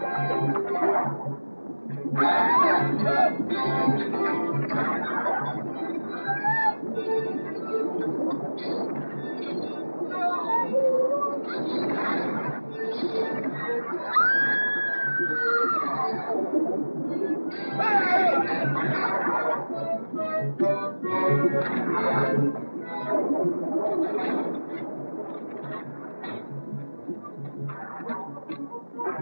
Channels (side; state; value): both; inverted; correlation -1.00